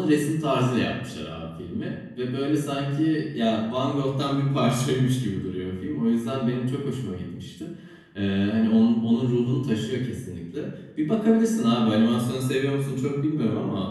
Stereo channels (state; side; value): identical; both; correlation 1.00